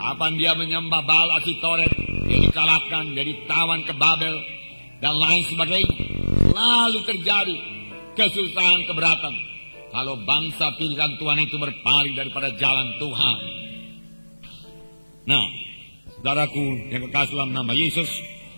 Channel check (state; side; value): inverted; both; correlation -1.00